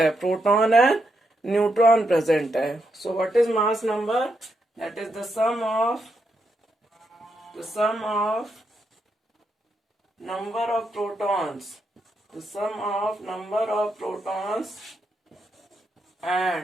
प्रोटॉन एंड न्यूट्रॉन प्रेजेंट है. So what is mass number? That is the sum of number of protons, the sum of number of protons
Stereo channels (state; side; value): normal; both; correlation 0.82